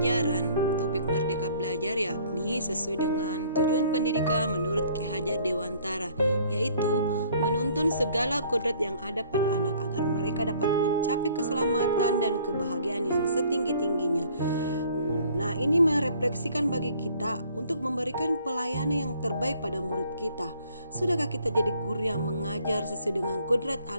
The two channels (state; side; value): inverted; both; correlation -0.58